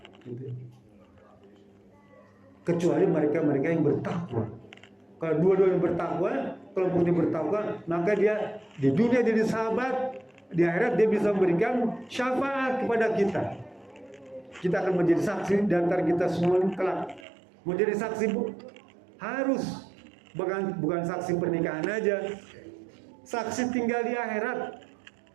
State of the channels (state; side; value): drops out; left; at 17.2 s